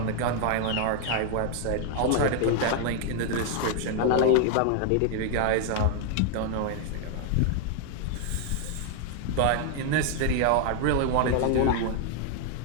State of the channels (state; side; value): different; both; correlation 0.00